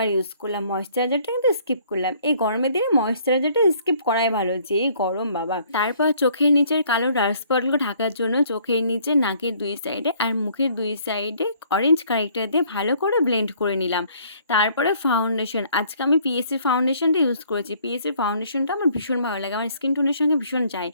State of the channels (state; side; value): inverted; both; correlation -0.61